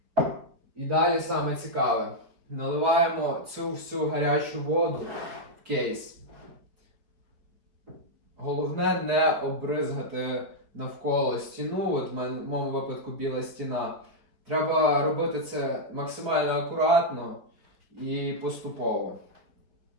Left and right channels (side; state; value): left; late; 5.2 ms